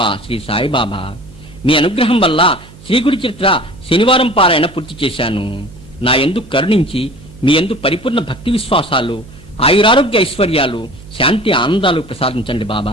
శ్రీ సాయిబాబా. మీ అనుగ్రహం వల్ల శ్రీగుడి చరిత్ర శనివారం పారాయణ పూర్తి చేశాను. నా యందు కరుణించి మీ యందు పరిపూర్ణ భక్తి విశ్వాసాలు, ఆయురారోగ్య ఐశ్వర్యాలు, శాంతి ఆనందాలు ప్రసాదించండి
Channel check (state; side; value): noise; right; hum, 20 dB below the sound